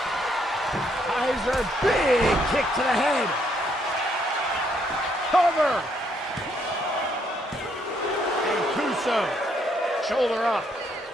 Kaiser, big kick to the head. Cover. Shoulder up.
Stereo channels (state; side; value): normal; both; correlation 0.72